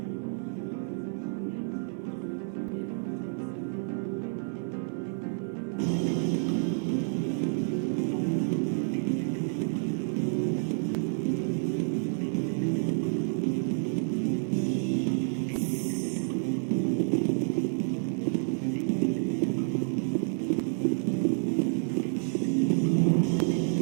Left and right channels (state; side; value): silent; left; digital silence